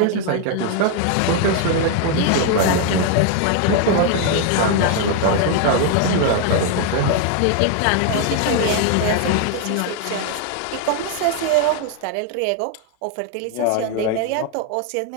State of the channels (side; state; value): both; different; correlation 0.00